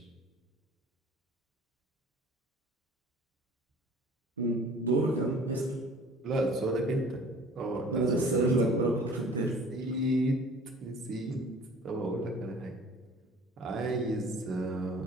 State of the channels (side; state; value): both; normal; correlation 0.48